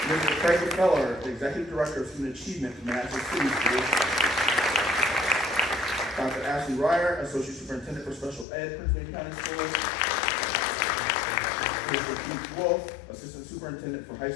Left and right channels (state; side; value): drops out; right; at 8.5 s